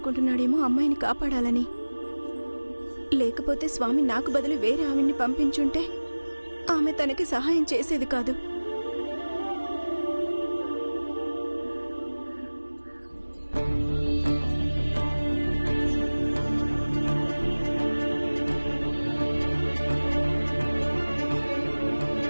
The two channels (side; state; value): both; inverted; correlation -1.00